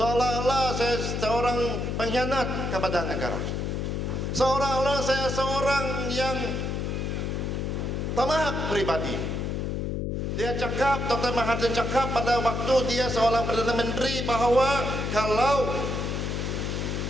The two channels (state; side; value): noise; left; hum, 2 dB below the sound